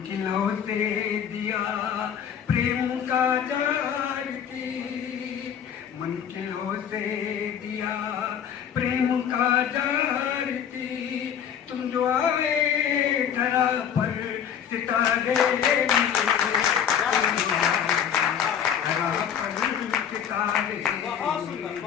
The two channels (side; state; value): right; quieter; 8.5 dB